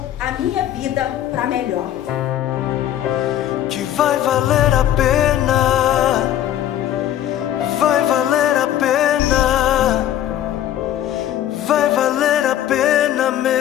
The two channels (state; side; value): quieter; right; 11.8 dB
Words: a minha vida para melhor. Que vai valer a pena, vai valer a pena, vai valer a pena